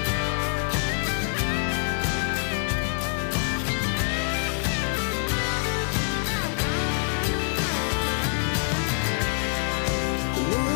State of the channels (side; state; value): right; silent; digital silence